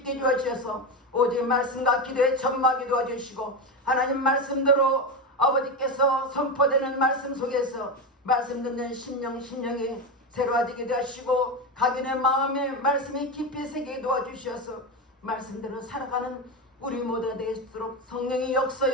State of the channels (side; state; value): both; normal; correlation 0.16